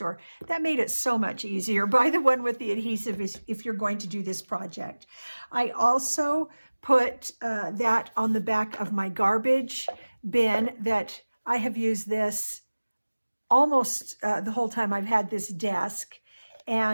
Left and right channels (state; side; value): inverted; both; correlation -1.00